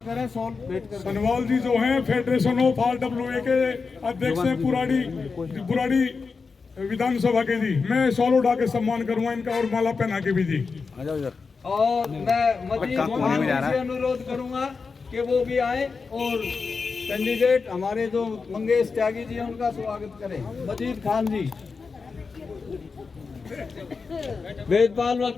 सनवाल जी जो हैं फेडरेशन ऑफ RWA के अध्यक्ष हैं बुराड़ी विधानसभा के जी। मैं शॉल उठा के सम्मान करूंगा इनका, और माला पहना के भी जी। और मैं मजीद खान जी से अनुरोध करूंगा कि वो भी आए, और कैंडिडेट हमारे जो मंगेश त्यागी जी हैं उनका स्वागत करें। मजीद खान जी। वेदपाल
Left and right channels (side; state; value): right; quieter; 4.8 dB